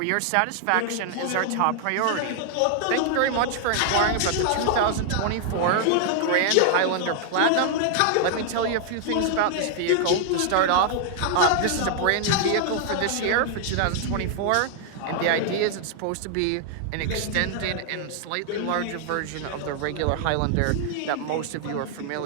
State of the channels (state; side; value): different; both; correlation 0.00